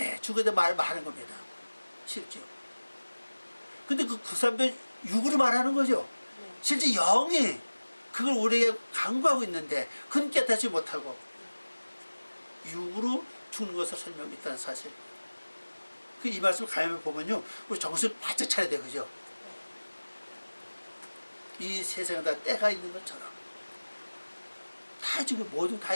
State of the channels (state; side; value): inverted; both; correlation -1.00